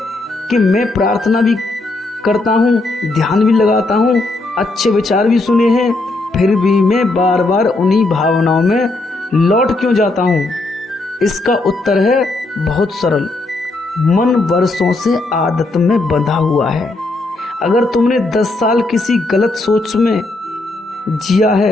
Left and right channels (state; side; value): quieter; right; 3.1 dB